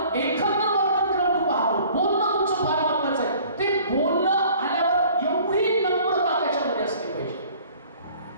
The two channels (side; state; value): both; inverted; correlation -0.51